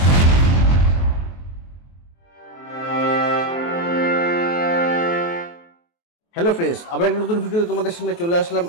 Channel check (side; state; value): right; late; 23 ms